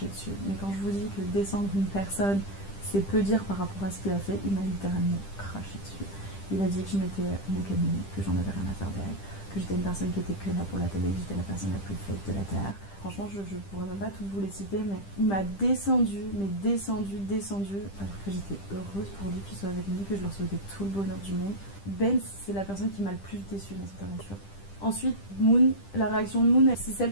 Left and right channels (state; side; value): late; right; 10 ms